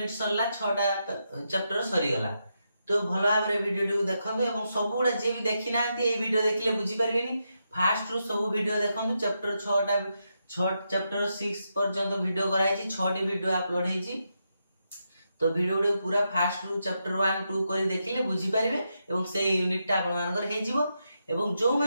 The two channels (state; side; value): inverted; both; correlation -0.84